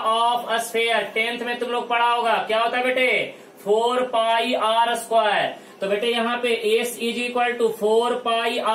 sphere 10th में तुम लोग पढ़ा होगा, क्या होता है बेटे 4 पाई r स्क्वायर। तो बेटे यहाँ पे s is equal to 4 pi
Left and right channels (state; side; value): identical; both; correlation 1.00